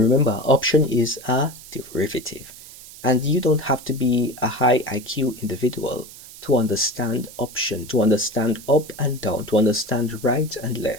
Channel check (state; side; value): noise; right; hiss, 17 dB below the sound